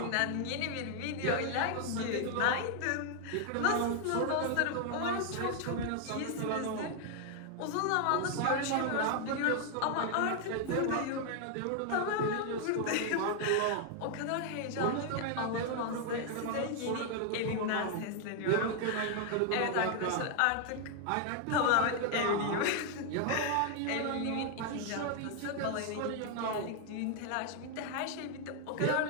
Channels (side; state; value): both; different; correlation 0.00